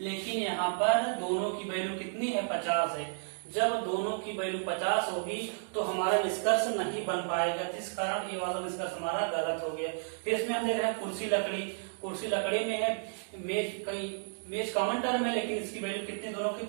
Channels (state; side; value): silent; left; digital silence